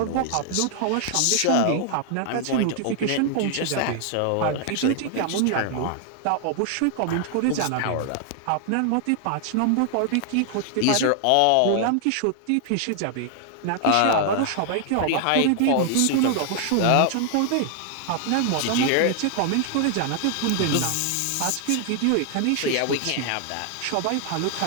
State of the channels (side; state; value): both; different; correlation 0.00